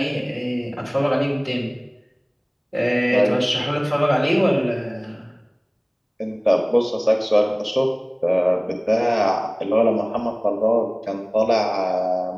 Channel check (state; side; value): identical; both; correlation 1.00